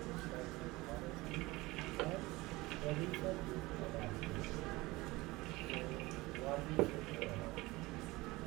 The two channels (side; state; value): left; quieter; 21.0 dB